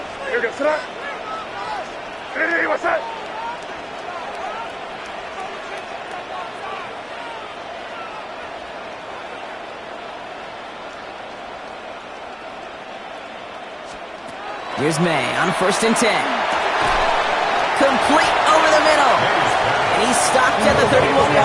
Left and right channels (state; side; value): identical; both; correlation 1.00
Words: Here goes up. Hey, what's that? Here's May on 1st and 10. Complete over the middle. And he's stopped at the